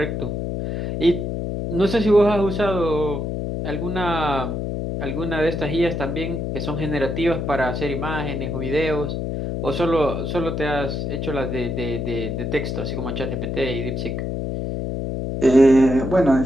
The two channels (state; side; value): noise; left; hum, 3 dB below the sound